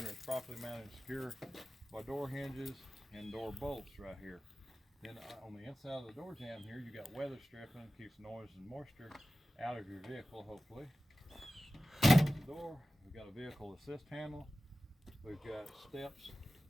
it's properly mounted and secure by door hinges and door bolts right here. Then on the inside of the door jamb here, you got weather stripping, keeps noise and moisture out of your vehicle, hopefully. Close the door. We've got a vehicle assist handle. We've got steps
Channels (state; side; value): normal; both; correlation 0.96